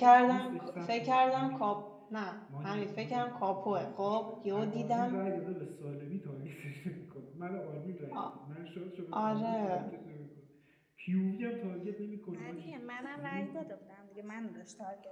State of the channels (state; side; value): identical; both; correlation 1.00